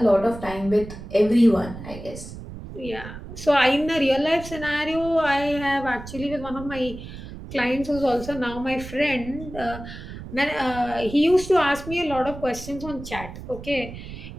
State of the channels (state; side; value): noise; right; rumble, 12 dB below the sound